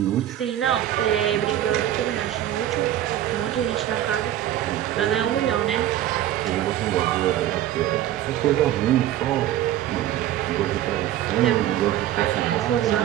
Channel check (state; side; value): quieter; left; 12.5 dB